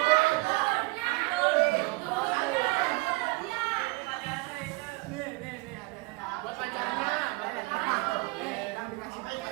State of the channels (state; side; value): quieter; left; 25.2 dB